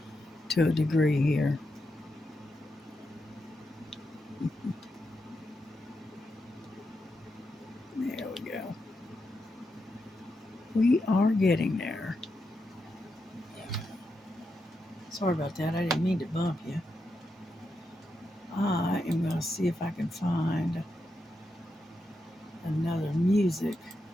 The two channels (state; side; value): normal; both; correlation 0.85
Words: to a degree here. There we go. We are getting there. Sorry about that. I didn't mean to bump you. I am going to see if I can find another music